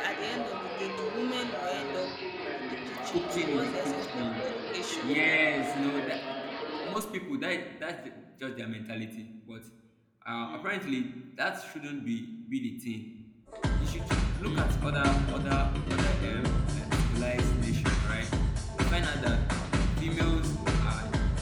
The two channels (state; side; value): identical; both; correlation 1.00